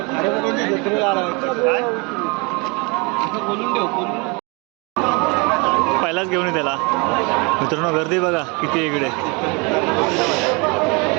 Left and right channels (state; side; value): quieter; left; 29.8 dB